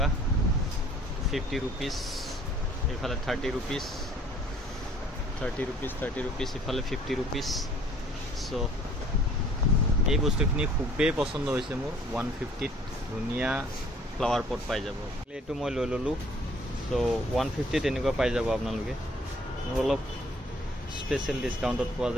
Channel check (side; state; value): both; normal; correlation 0.56